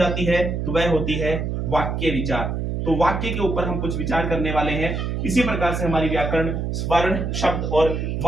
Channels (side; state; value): right; noise; hum, 2 dB below the sound